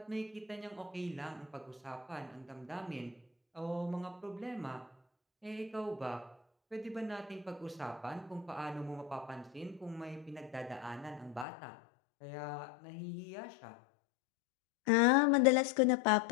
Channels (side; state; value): right; drops out; at 11.5 s